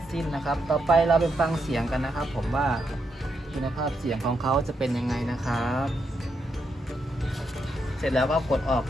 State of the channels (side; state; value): both; normal; correlation 0.81